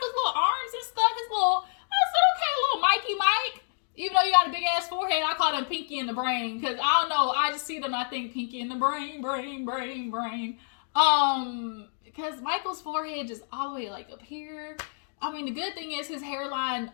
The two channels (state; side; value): silent; right; digital silence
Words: little arms and stuff? I said, okay, little Mikey Mike. Even though you got a big ass forehead, I call him Pinky in the Brain. Because I don't know, I just see them and I think Pinky in the Brain. Because Michael's forehead just all the way like up here. I mean, the good thing is his hairline